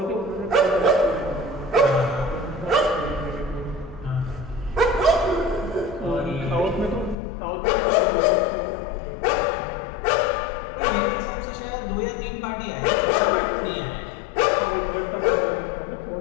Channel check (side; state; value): right; drops out; at 7.2 s